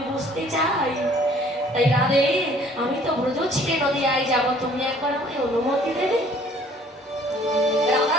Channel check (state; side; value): normal; both; correlation 0.56